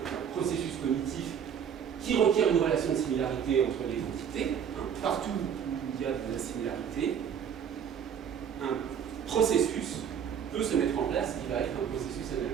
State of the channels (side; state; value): left; quieter; 8.0 dB